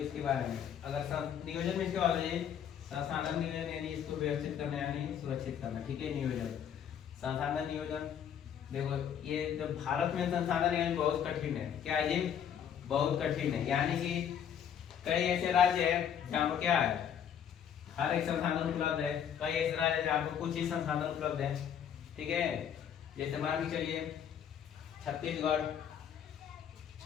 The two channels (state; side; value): quieter; right; 8.8 dB